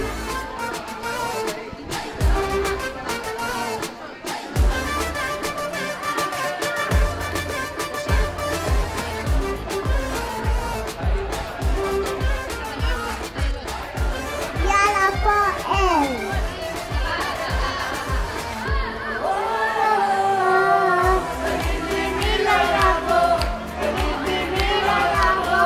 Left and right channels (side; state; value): both; identical; correlation 1.00